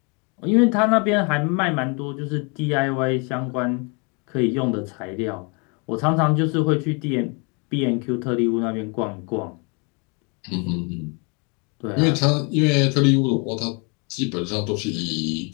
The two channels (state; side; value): quieter; right; 33.7 dB